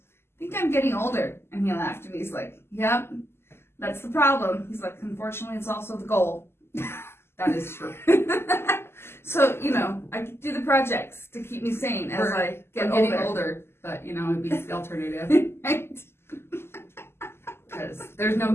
think I'm getting older. And he laughed and he's like, yep, that's the problem. He's like, unfortunately, it's also the goal. that is true. So, you know, I do the projects to keep me sane as I get getting older. But, you know, it beats the alternative. Right? Because there's no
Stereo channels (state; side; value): late; right; 0.12 ms